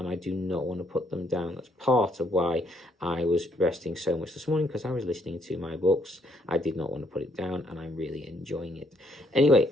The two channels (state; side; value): normal; both; correlation 0.70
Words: I do not want to put them down. That's part of why I was resting so much this morning because I was listening to my books. I did not want to put it down, and I'm really enjoying it. Anyway,